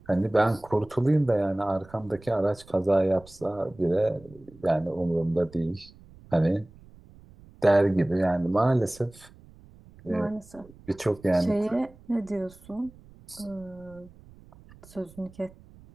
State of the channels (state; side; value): noise; right; rumble, 23 dB below the sound